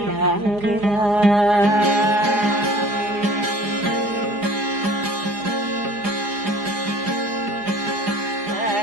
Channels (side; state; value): left; late; 4.9 ms